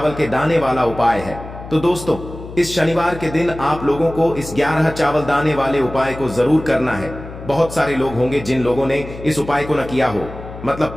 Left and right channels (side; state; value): left; noise; hum, 13 dB below the sound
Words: के दाने वाला उपाय है। तो दोस्तों, इस शनिवार के दिन आप लोगों को इस 11 चावल दाने वाले उपाय को जरूर करना है। बहुत सारे लोग होंगे जिन लोगों ने इस उपाय को न किया हो, मतलब